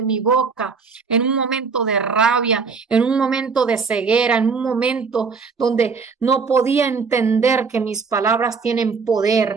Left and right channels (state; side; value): quieter; left; 5.1 dB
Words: mi boca en un momento de rabia, en un momento de ceguera, en un momento donde no podía entender que mis palabras tienen